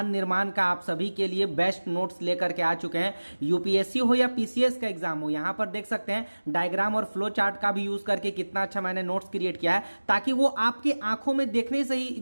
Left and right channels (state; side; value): inverted; both; correlation -1.00